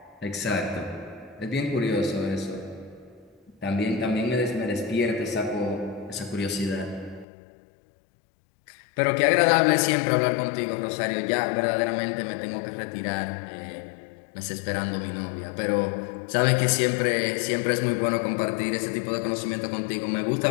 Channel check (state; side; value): drops out; right; at 7.2 s